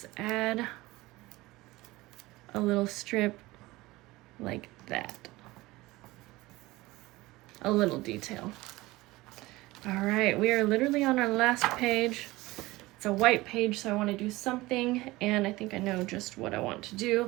add a little strip like that. A little detail. All right, we are literally on our last page. It's a white page, so I want to do something, and I think I know just what I want to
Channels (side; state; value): left; quieter; 19.8 dB